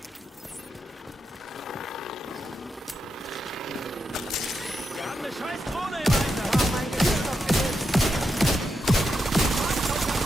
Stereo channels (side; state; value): both; normal; correlation 0.84